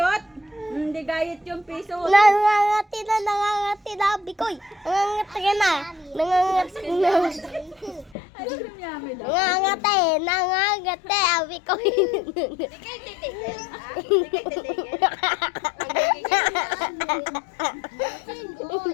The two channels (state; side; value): drops out; right; at 8.2 s